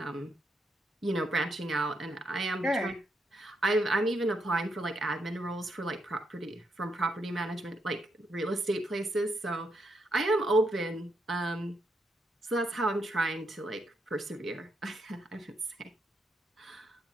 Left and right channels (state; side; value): normal; both; correlation 0.79